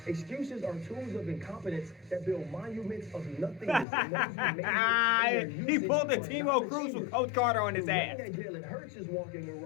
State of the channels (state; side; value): drops out; right; at 3.9 s